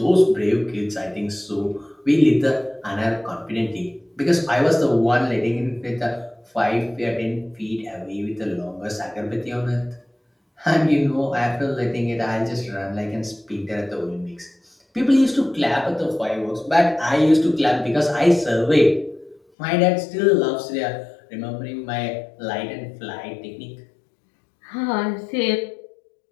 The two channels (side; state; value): right; drops out; at 19.4 s